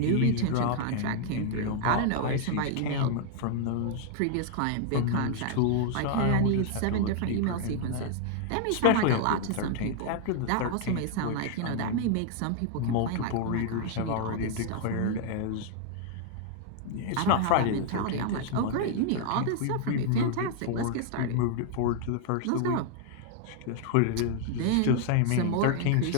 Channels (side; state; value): both; different; correlation 0.00